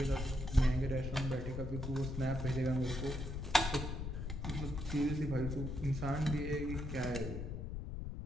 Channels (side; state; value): left; noise; rumble, 5 dB below the sound